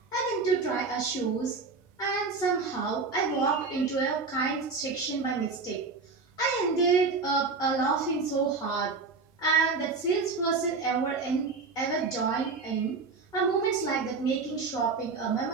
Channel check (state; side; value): quieter; left; 4.4 dB